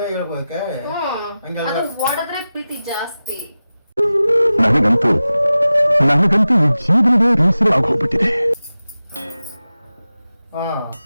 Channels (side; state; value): both; inverted; correlation -0.95